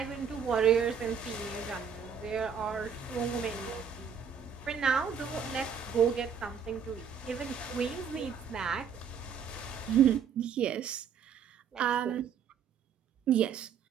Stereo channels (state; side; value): quieter; left; 7.1 dB